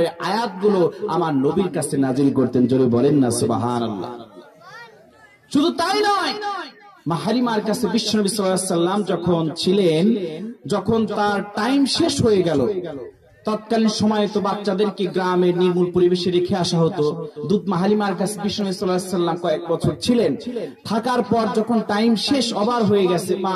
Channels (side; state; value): both; identical; correlation 1.00